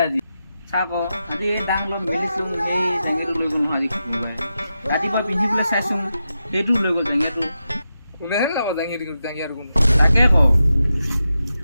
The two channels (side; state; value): both; inverted; correlation -0.89